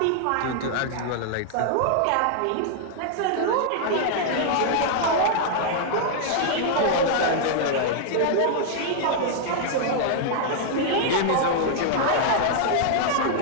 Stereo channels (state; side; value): different; both; correlation -0.01